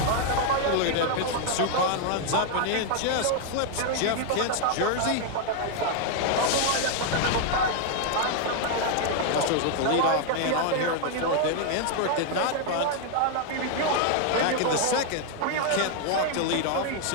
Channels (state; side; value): different; both; correlation 0.00